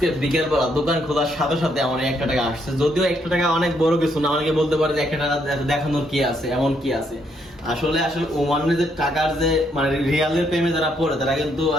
বিকেল বেলা দোকান খোলার সাথে সাথে আমার 1 টাকা আসছে। যদিও 1 টাকা অনেক বড় কিছু না, অনেকে বলতে পারে যে 1 টাকা দেখানোর কি আছে, এমন কি আছে। আসলে ওমানের যে টাকার যে মানে রিয়ালের প্রেমে যারা পড়ে তারা কিন্তু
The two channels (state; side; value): normal; both; correlation 0.73